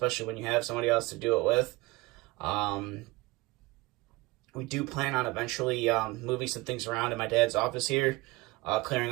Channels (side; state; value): left; quieter; 22.0 dB